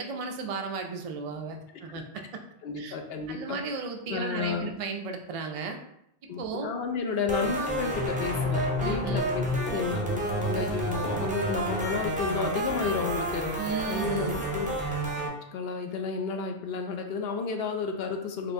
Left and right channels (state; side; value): normal; both; correlation 0.02